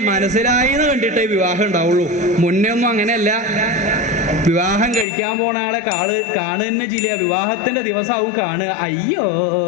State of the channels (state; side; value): drops out; right; at 5.1 s